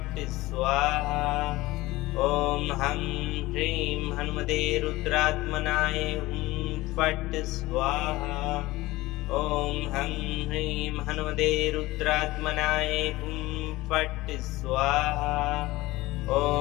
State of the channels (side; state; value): right; quieter; 19.1 dB